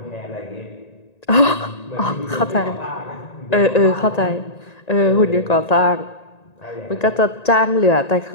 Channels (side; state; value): right; late; 1.9 ms